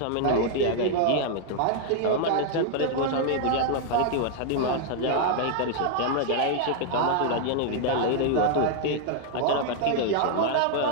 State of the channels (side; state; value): both; different; correlation 0.00